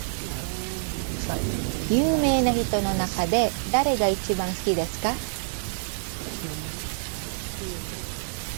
有名な人の中で誰が一番好きですか?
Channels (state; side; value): silent; left; digital silence